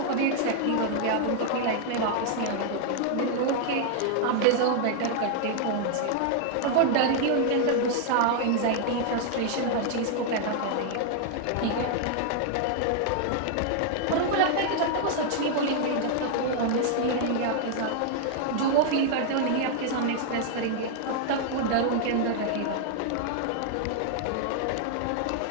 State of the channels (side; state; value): both; different; correlation 0.00